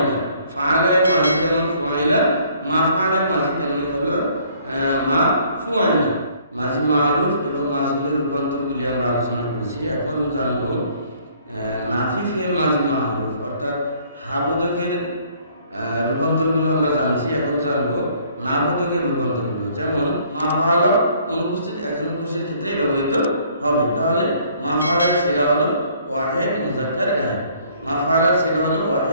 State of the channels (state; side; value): inverted; both; correlation -0.60